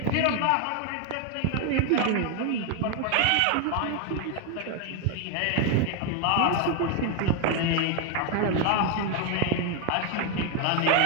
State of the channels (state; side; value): different; both; correlation 0.01